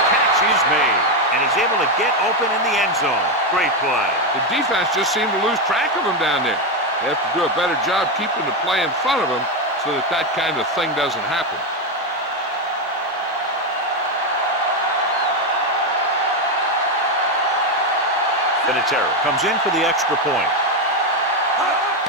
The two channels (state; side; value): normal; both; correlation 0.09